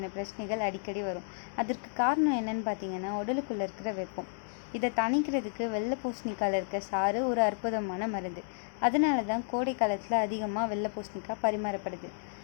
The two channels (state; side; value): silent; right; digital silence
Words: பிரச்சனைகள் அடிக்கடி வரும். அதற்கு காரணம் என்னன்னு பார்த்தீங்கன்னா, உடலுக்குள்ளே இருக்கிற வெப்பம். இதை தணிக்கிறதுக்கு வெள்ளை பூசணிக்காயில் இருக்க சாறு ஒரு அற்புதமான மருந்து. அதனால தான் கோடை காலத்தில் அதிகமாக வெள்ளை பூசணிக்காய் பரிமாறப்படுது.